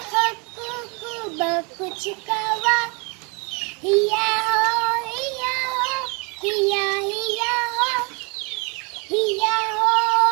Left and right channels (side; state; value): left; quieter; 32.8 dB